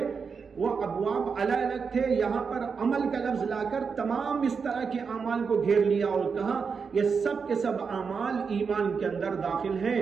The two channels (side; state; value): left; quieter; 5.6 dB